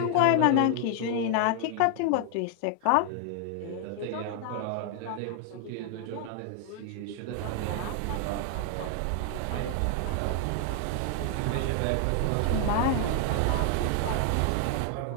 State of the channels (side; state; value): both; different; correlation 0.00